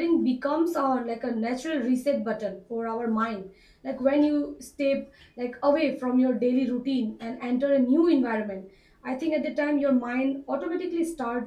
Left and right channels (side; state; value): both; identical; correlation 1.00